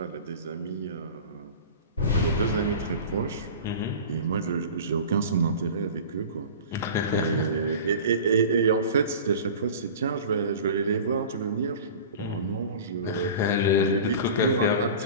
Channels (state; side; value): inverted; both; correlation -0.36